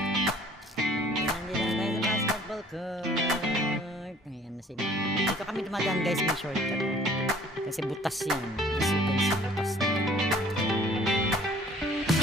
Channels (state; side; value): normal; both; correlation 0.54